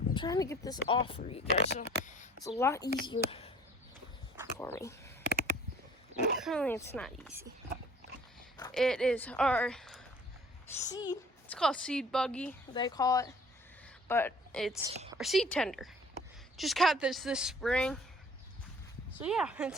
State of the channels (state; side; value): normal; both; correlation 0.51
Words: I'm trying to get this off for you guys, so it's a lot easier for me. Apparently, it's not easy. It is our seed. It's called seed buggy, they call it, but it's our seed tender. Just got this spring. So yeah,